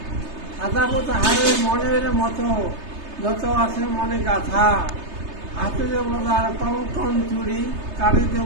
সাজাবো তাহারে মনের মতো, যত আছে মনে গাথা। হাতে দেব তার কঙ্কন চুড়ি, কানে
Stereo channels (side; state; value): left; late; 3.3 ms